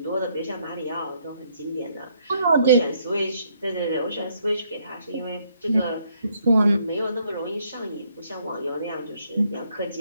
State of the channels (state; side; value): inverted; both; correlation -0.70